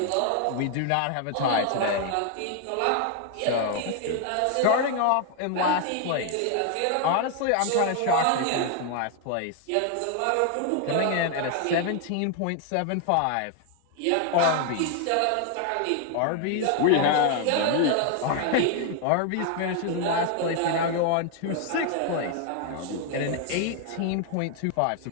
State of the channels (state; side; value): different; both; correlation 0.00